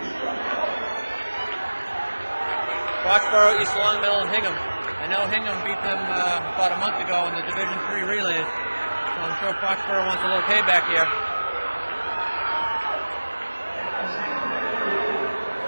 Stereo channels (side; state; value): both; inverted; correlation -1.00